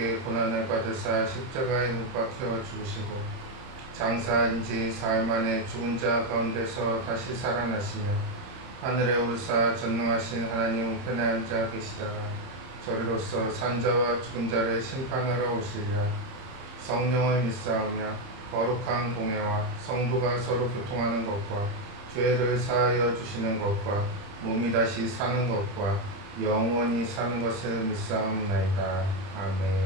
고난을 받으사 십자가에 못 박혀 죽으시고 장사한 지 사흘 만에 죽은 자 가운데서 다시 살아나시며 하늘에 오르사 전능하신 하나님 우편에 앉아 계시다가 저리로서 산자와 죽은 자를 심판하러 오시리라. 성령을 믿사오며 거룩한 공회와 성도가 서로 교통하는 것과 죄를 사하여 주시는 것과 몸이 다시 사는 것과 영원히 사는 것을 믿사옵나이다.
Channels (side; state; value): left; late; 30 ms